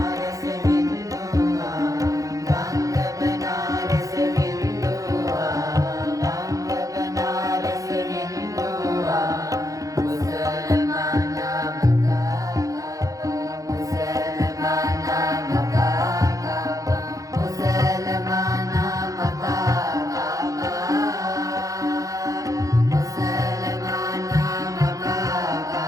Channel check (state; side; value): late; left; 0.16 ms